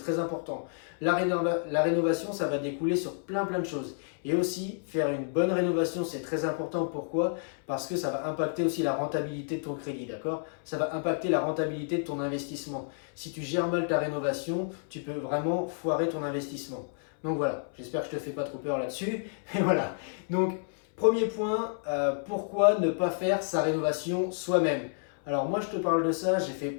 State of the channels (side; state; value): right; silent; 58 dB below the other